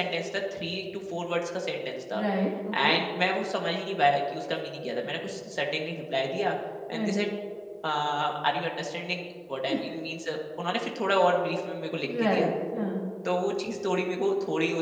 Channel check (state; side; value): identical; both; correlation 1.00